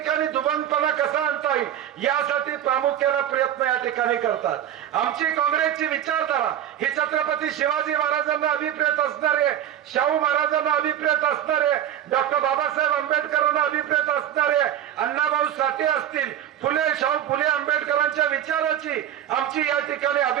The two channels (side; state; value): left; quieter; 11.0 dB